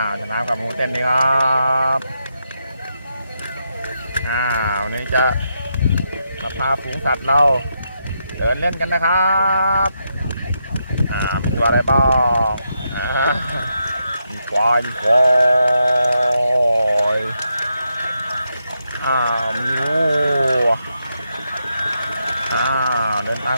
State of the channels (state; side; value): inverted; both; correlation -0.82